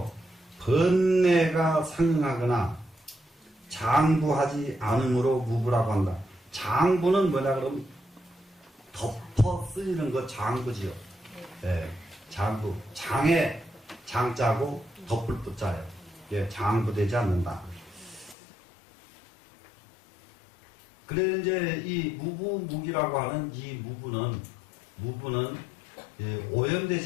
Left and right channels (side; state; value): right; drops out; at 18.4 s